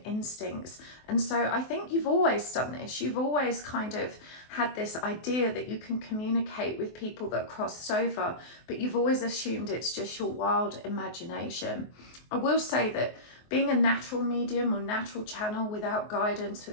instincts. And so I think you've always done this. You've always kind of had this idea that you can communicate with people that crossed over, but you've always assumed it's just your wild imagination. I will say that being a natural medium or natural channel without guidance,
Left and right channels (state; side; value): late; right; 24 ms